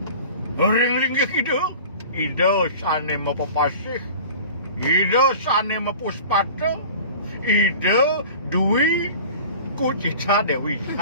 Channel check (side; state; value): both; inverted; correlation -0.41